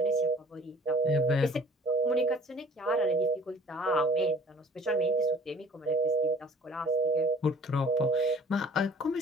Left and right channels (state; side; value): normal; both; correlation 0.50